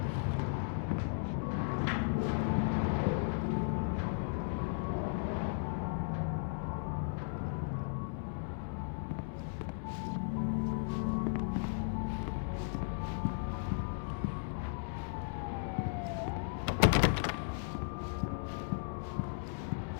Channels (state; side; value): silent; right; digital silence